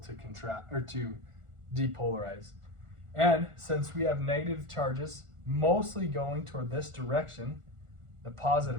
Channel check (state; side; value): late; left; 1.4 ms